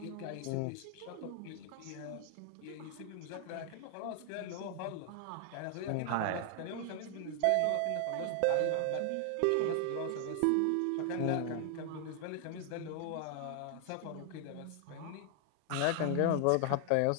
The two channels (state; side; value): different; both; correlation 0.00